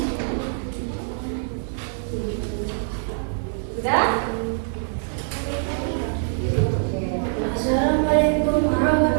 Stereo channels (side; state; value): left; silent; digital silence